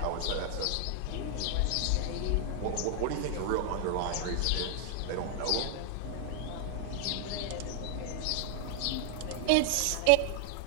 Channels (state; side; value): different; both; correlation 0.00